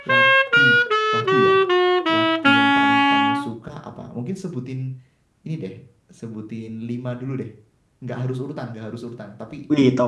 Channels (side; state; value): both; identical; correlation 1.00